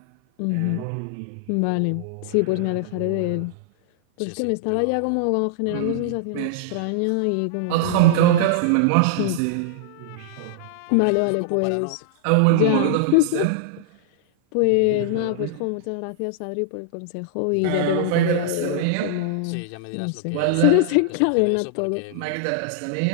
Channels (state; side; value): different; both; correlation -0.01